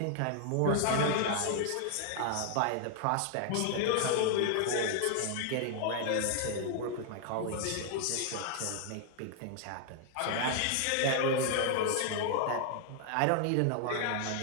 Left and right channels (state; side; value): different; both; correlation 0.00